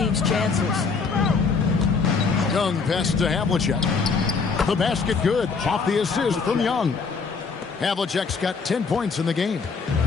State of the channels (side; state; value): right; quieter; 5.0 dB